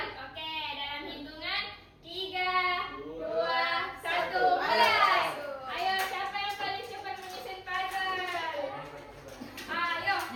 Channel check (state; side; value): identical; both; correlation 1.00